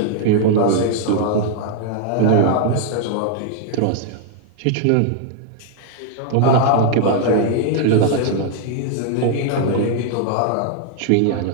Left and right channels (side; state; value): both; different; correlation 0.00